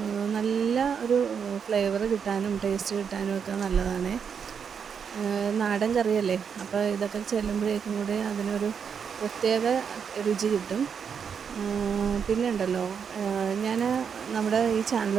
നല്ല ഒരു ഫ്ലേവർ കിട്ടാനും ടേസ്റ്റ് കിട്ടാനും ഒക്കെ നല്ലതാണ്. നാടൻ കറിയല്ലേ, അപ്പോൾ ഇതൊക്കെ ചെല്ലുമ്പോഴേക്കും കൂടി അതിനൊരു പ്രത്യേക രുചി കിട്ടും. പിന്നെ ഉണ്ടല്ലോ, ഞാൻ നമ്മുടെ ഈ ചാനൽ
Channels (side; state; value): left; quieter; 6.9 dB